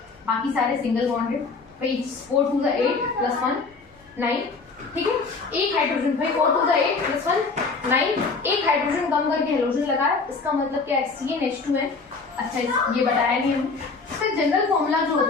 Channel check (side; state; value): right; quieter; 4.3 dB